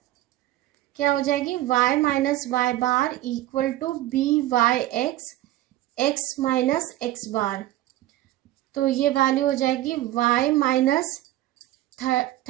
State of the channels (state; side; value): quieter; left; 15.0 dB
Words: क्या हो जाएगी? y minus y bar equal to byx x minus x bar. तो ये value हो जाएगी y minus